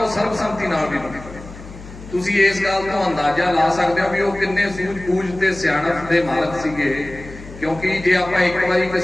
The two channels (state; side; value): noise; left; hum, 15 dB below the sound